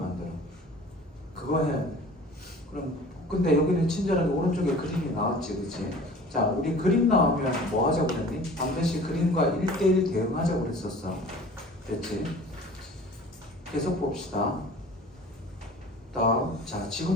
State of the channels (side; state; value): both; normal; correlation 0.44